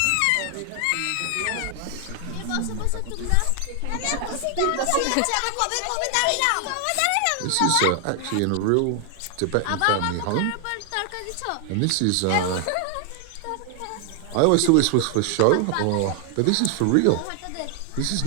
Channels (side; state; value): both; different; correlation 0.00